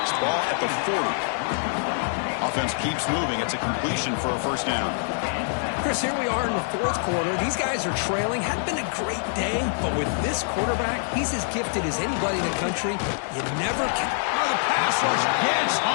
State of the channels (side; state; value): right; silent; 62 dB below the other